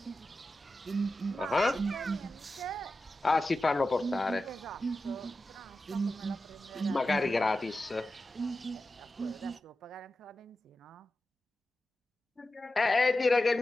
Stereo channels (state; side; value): normal; both; correlation 0.92